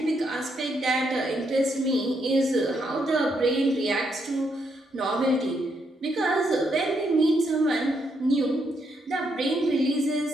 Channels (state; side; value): normal; both; correlation 0.77